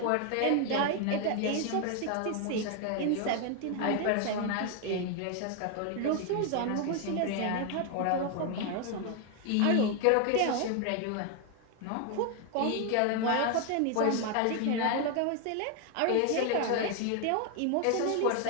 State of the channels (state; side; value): different; both; correlation 0.01